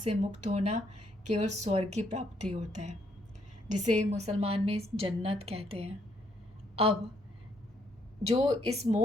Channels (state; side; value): normal; both; correlation 0.71